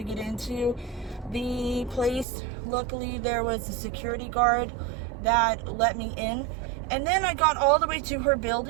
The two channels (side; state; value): left; drops out; at 2.2 s